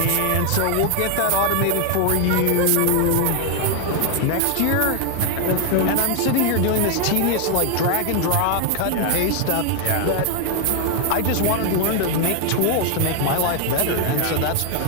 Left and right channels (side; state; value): both; different; correlation 0.00